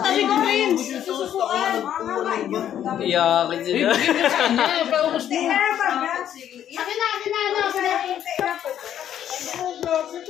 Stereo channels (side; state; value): right; quieter; 10.4 dB